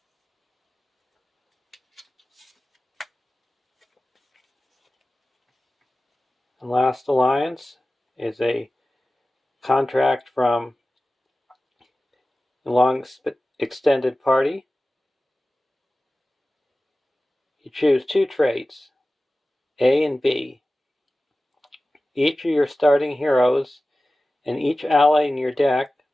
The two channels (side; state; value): both; normal; correlation 0.96